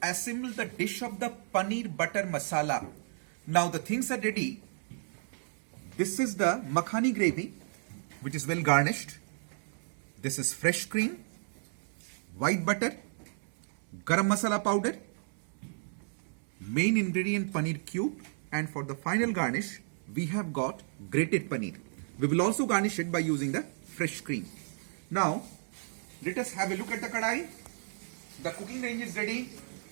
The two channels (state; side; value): silent; left; 56 dB below the other